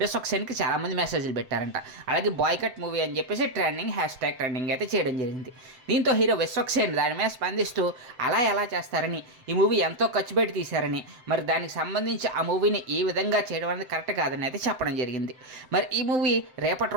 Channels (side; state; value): left; late; 7.7 ms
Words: విశ్వక్సేన్కి చాలామంది మెసేజ్లు పెట్టారంట. అలాగే బాయ్కట్ మూవీ అని చెప్పేసి ట్రెండింగ్ అయితే చేయడం జరిగింది. దీంతో హీరో విశ్వక్సేన్ దాని మీద స్పందిస్తూ అలా ఎలా చేస్తారని, ఈ మూవీ ఎంతో ఖర్చు పెట్టి తీశారని, మరి దానికి సంబంధించి ఆ మూవీని ఈ విధంగా చేయడం అనేది కరెక్ట్ కాదని అయితే చెప్పడం జరిగింది. మరి ఈ మూవీ రేపటి